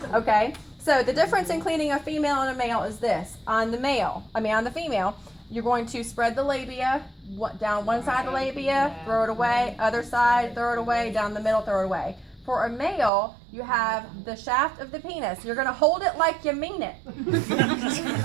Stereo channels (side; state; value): left; drops out; at 13.1 s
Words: Okay. So the difference in cleaning a female and a male is this. On the female, you're going to spread the labia down one side of the labia, throw it away, other side, throw it away, down the middle, throw it away. For a male, you have the shaft of the penis. You're going to hold it like you mean it.